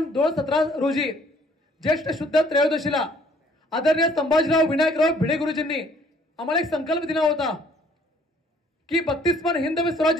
2017 रोजी ज्येष्ठ शुद्ध त्रयोदशीला आदरणीय संभाजीराव विनायकराव भिडे गुरुजींनी आम्हाला एक संकल्प दिला होता की 32 मान हिंदवी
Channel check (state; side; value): normal; both; correlation 0.60